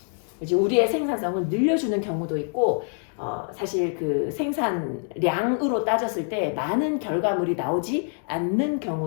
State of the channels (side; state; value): right; silent; 62 dB below the other